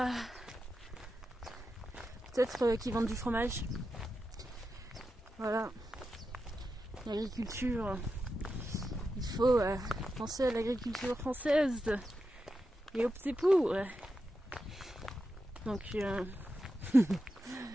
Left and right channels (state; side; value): normal; both; correlation 0.89